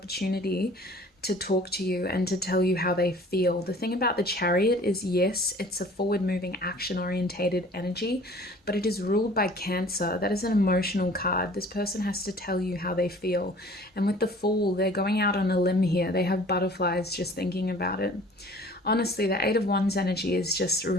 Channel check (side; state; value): both; normal; correlation 0.50